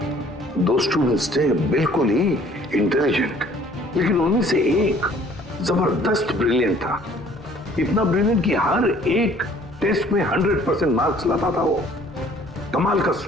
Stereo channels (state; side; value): normal; both; correlation 0.56